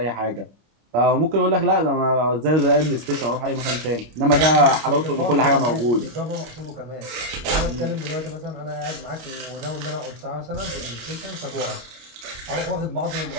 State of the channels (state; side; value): late; left; 25 ms